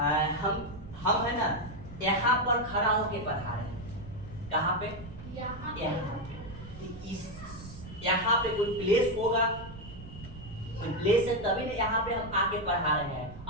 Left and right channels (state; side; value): noise; right; rumble, 14 dB below the sound